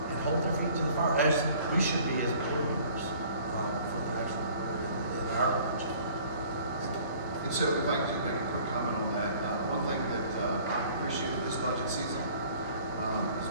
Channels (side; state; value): both; inverted; correlation -0.52